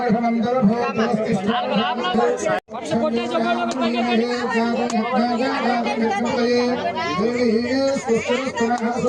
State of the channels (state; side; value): identical; both; correlation 1.00